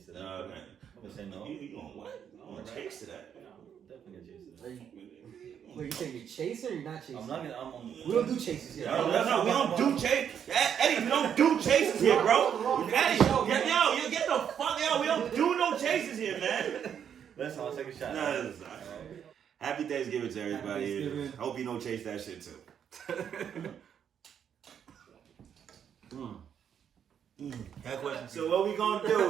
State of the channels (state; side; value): quieter; left; 8.4 dB